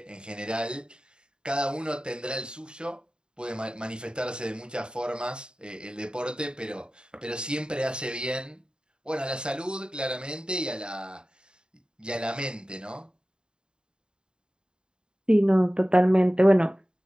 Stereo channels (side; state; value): left; late; 0.050 ms